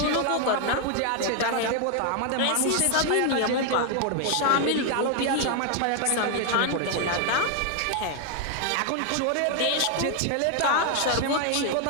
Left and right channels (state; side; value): different; both; correlation 0.00